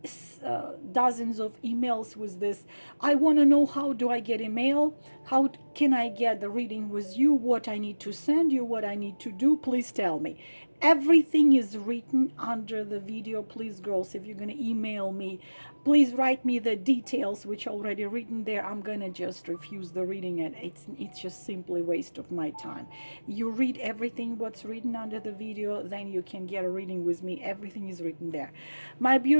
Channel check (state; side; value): inverted; both; correlation -1.00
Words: dozens of emails with this. I want to know, how do I get email? How can I get the reading with you? What I need to send you, what I need to do? Please tell me. Everything is written under the video. Please, girls, if you're going to email me, please write me the details which are already written there. I'm going to just refuse the reading, and it's just simply waste of my time. You read everything what's written under the video, then you can get a reading with me. Everything is written there. My